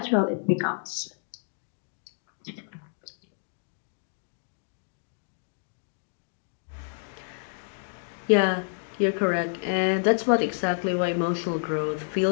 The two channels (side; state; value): right; silent; digital silence